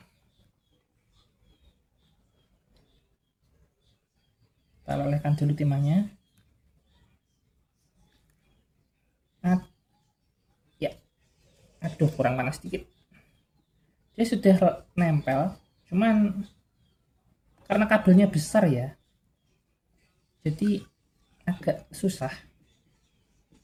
Kita lelehkan dulu timahnya. Ya, aduh kurang panas dikit. Dia sudah nempel, cuman karena kabelnya besar ya, jadi agak susah.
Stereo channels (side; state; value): both; identical; correlation 1.00